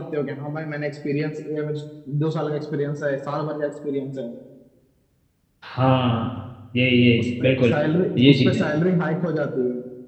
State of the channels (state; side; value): identical; both; correlation 1.00